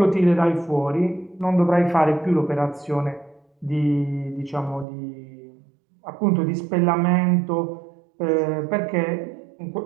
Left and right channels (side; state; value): left; drops out; at 4.9 s